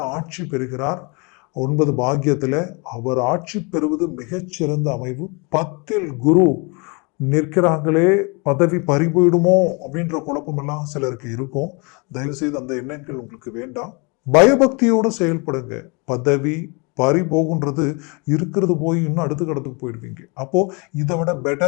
ஆட்சி பெறுகிறார். 9 பாக்கியத்துல அவர் ஆட்சி பெறுவது மிகச்சிறந்த அமைவு. 10ல் குரு நிற்கிறாங்களே, பதவி பறி போயிடுமோ அப்படின்ற குழப்பம் எல்லாம் சிலருக்கு இருக்கும். தயவு செய்து அந்த எண்ணங்கள் உங்களுக்கு வேண்டாம். பயபக்தியோடு செயல்படுங்க. பதவி பறி போகுன்றது இருக்கிறது போய் இன்னும் அடுத்த கடத்துக்கு போயிடுவீங்க. அப்போ இதை விட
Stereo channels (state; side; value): quieter; right; 31.1 dB